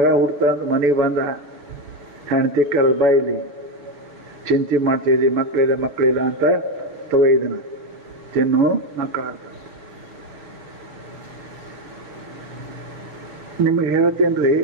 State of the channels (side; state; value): left; late; 7.0 ms